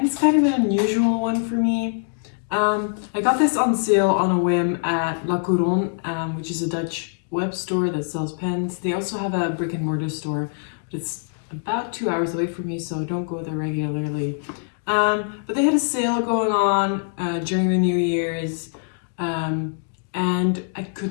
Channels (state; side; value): silent; right; digital silence